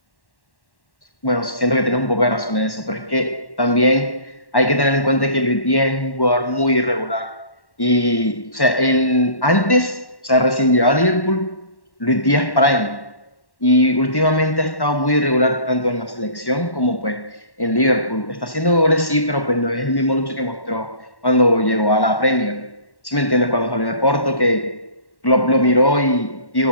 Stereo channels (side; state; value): right; late; 1.1 ms